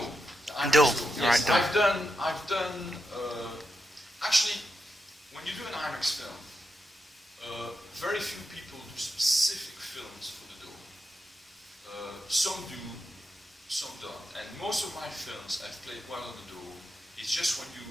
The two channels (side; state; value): both; normal; correlation 0.86